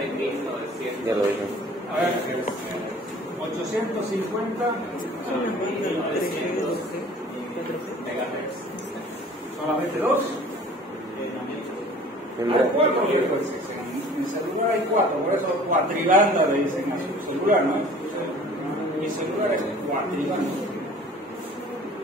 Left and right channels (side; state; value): both; normal; correlation 0.48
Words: Ya lo dije. A ver, 850 megahertz. solamente 2. Hay 4 frecuencias. En celular hay 4, por eso cuatribanda le dicen a su celular, ¿no? Mi celular es cuatribanda.